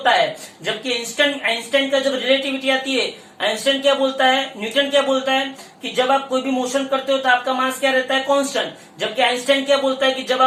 है, जबकि आइंस्टाइन का जब रिलेटिविटी आती है, आइंस्टाइन क्या बोलता है, न्यूटन क्या बोलता है कि जब आप कोई भी मोशन करते हो तो आपका मास क्या रहता है कांस्टेंट, जबकि आइंस्टाइन क्या बोलता है कि जब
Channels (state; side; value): identical; both; correlation 1.00